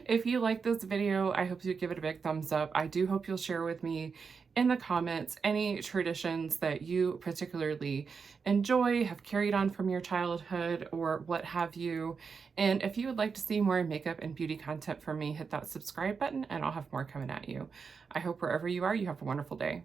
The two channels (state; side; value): quieter; left; 5.5 dB